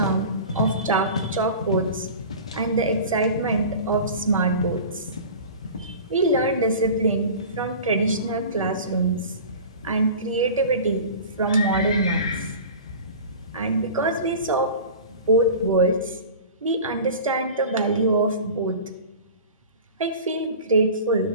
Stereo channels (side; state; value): both; inverted; correlation -0.37